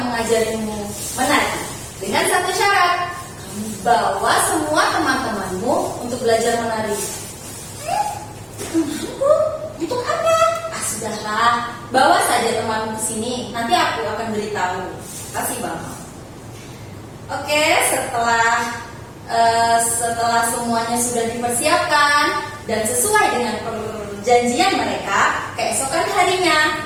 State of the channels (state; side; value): identical; both; correlation 1.00